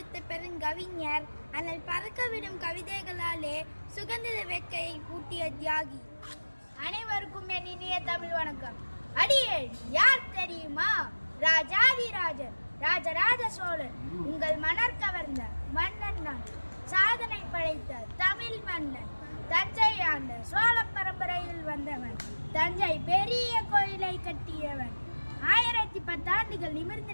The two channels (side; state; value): both; inverted; correlation -1.00